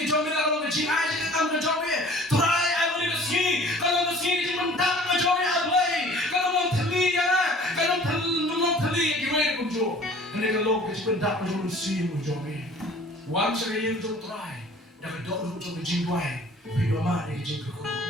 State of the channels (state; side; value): normal; both; correlation 0.49